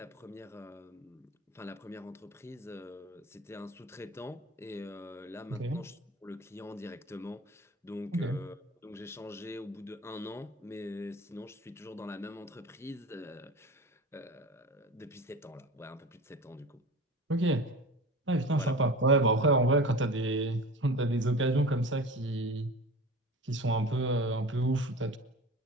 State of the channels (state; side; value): normal; both; correlation 0.35